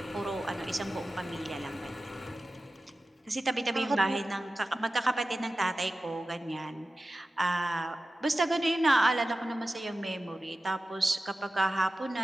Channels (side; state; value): both; normal; correlation 0.95